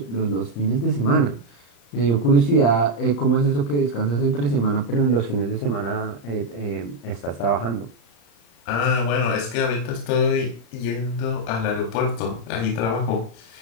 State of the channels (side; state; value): right; late; 35 ms